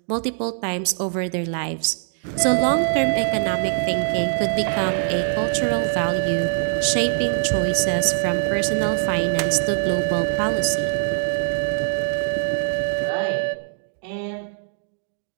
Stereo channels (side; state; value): left; silent; digital silence